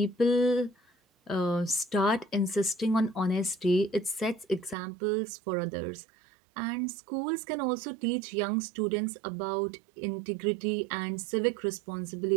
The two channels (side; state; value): left; drops out; at 4.8 s